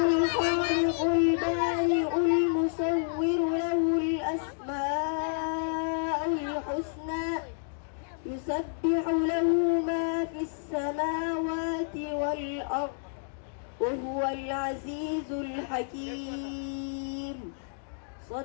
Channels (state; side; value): silent; right; digital silence